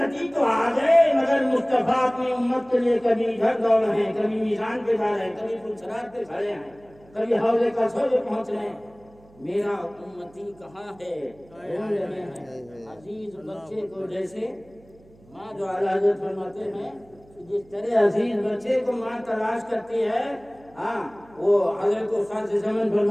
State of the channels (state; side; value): noise; right; hum, 27 dB below the sound